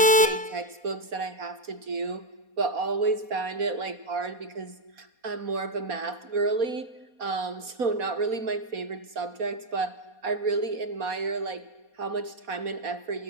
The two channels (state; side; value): late; left; 4.2 ms